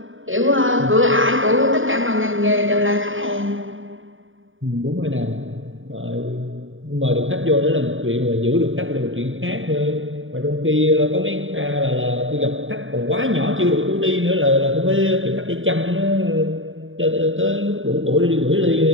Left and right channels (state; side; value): late; left; 0.57 ms